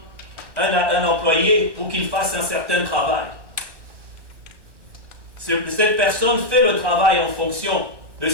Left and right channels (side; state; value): left; late; 1.1 ms